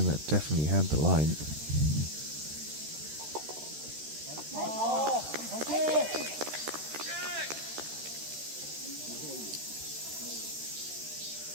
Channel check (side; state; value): left; late; 13 ms